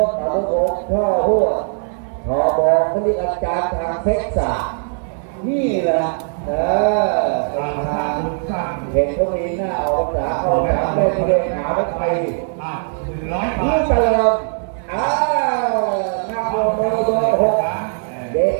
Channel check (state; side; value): silent; left; digital silence